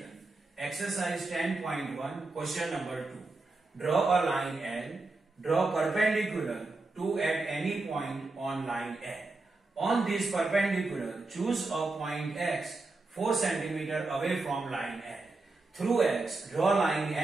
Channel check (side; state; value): left; quieter; 3.3 dB